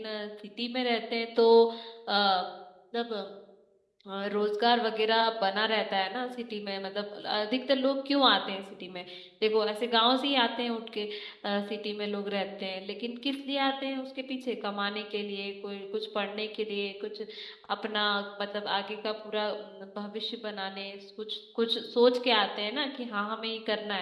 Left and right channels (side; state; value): both; identical; correlation 1.00